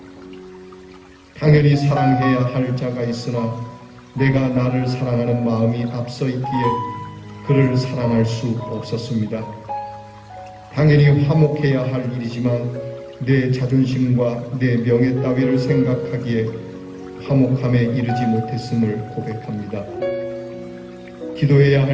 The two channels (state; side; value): identical; both; correlation 1.00